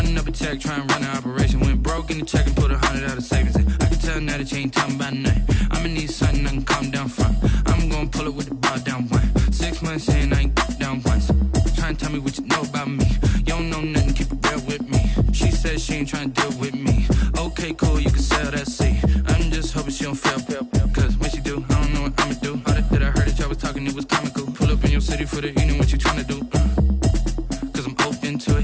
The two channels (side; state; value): both; identical; correlation 1.00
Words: up a check, trying to run an operation. Went broke in the check and put 100 out of savings in. I can tell now that you ain't talking about nothing. I'ma need something I can calm down from. I'm gonna pull it with the bar down one. 6 months in, I ain't down once. Trying to tell me what you know about me. You don't know nothing, keep it real with me. She said she ain't trying to deal with me. Okay, cool, you can sell that seat. I'm just hoping she don't fail. Cause when she do, I don't know what I'ma do. All that I heard that y'all was talking, it was comical. Pull up in your city for the evening, what you trying to do? Cause I'm open to